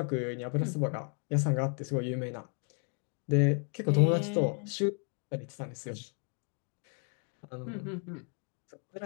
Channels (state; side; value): quieter; right; 39.6 dB